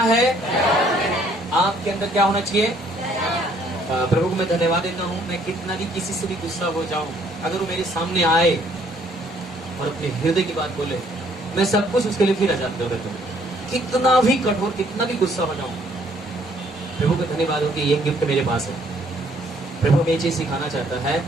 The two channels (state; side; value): normal; both; correlation 0.64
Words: है। आपके अंदर क्या होना चाहिए? प्रभु को मैं धन्यवाद देता हूँ। मैं कितना भी किसी से भी गुस्सा हो जाऊं, अगर वो मेरे सामने आए और अपने हृदय की बात बोले, मैं सब कुछ उसके लिए फिर आजाद कर देता हूँ। कितना भी कठोर, कितना भी गुस्सा हो जाऊं, प्रभु को धन्यवाद हो कि ये गिफ्ट मेरे पास है। प्रभु हमें ये चीज सिखाना चाहता है,